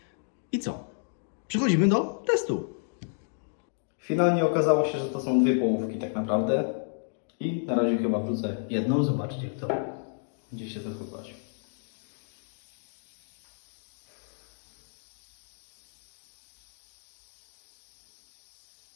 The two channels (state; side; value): silent; right; digital silence